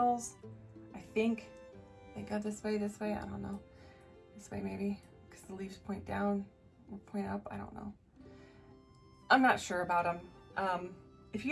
I think they go this way, I don't know. This way maybe, because the leaves point down or point up, I don't know. I'm not sure about them. If you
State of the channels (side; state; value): both; identical; correlation 1.00